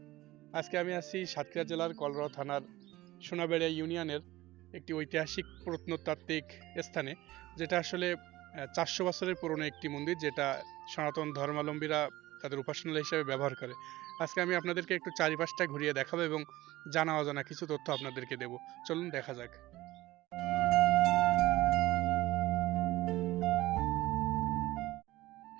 আজকে আমি আছি সাতক্ষীরা জেলার কলরোয়া থানার সোনাবেড়িয়া ইউনিয়নের একটি ঐতিহাসিক প্রত্নতাত্ত্বিক স্থানে, যেটা আসলে ৪০০ বছরের পুরনো একটি মন্দির, যেটা সনাতন ধর্মাবলম্বীরা তাদের উপাসনালয় হিসেবে ব্যবহার করে। আজকে আমি আপনাদেরকে একটু চারিপাশটা ঘুরিয়ে দেখাবো এবং জানা অজানা কিছু তথ্য আপনাদেরকে দেব। চলুন দেখা যাক।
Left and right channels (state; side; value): quieter; left; 17.6 dB